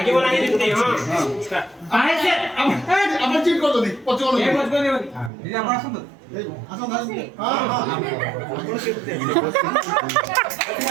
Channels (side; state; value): left; drops out; at 5.3 s